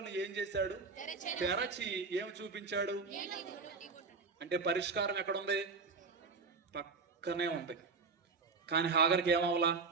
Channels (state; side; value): quieter; left; 4.5 dB